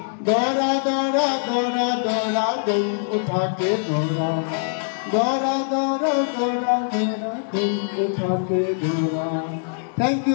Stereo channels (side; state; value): right; silent; digital silence